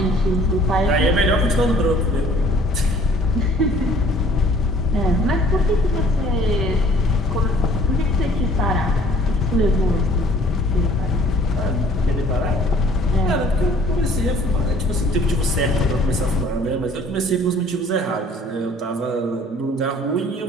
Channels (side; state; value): both; normal; correlation 0.54